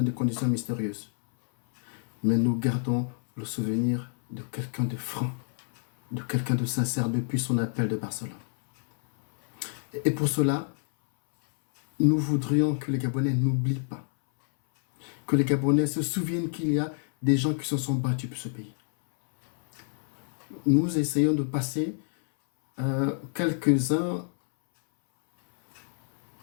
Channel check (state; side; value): silent; right; 60 dB below the other